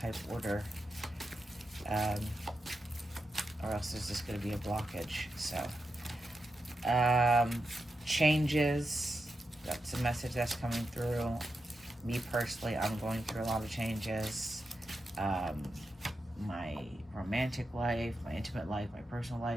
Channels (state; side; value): normal; both; correlation 0.88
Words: order, or else there's just going to be a blockage. So changes, that's a message that's coming through. Me personally, I'm going through a lot of changes. My romantic life, my intimate life, my personal